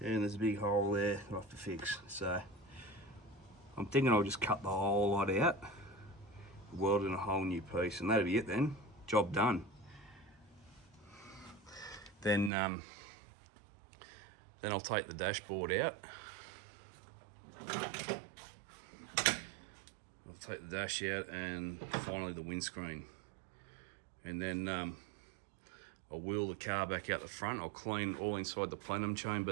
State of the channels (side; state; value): left; drops out; at 12.5 s